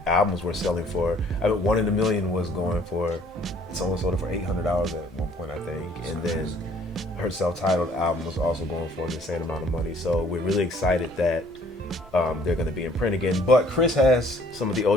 albums were selling for, One in a Million was going for, someone sold it for $800 at one point, I think, and then her self-titled album was also going for an insane amount of money. So we're really excited that they're going to be in print again. But Kris has some of the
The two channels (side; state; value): both; normal; correlation 0.59